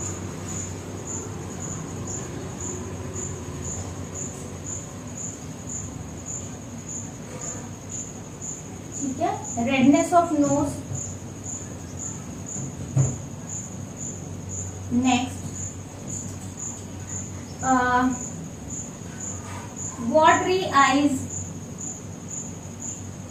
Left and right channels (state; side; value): identical; both; correlation 1.00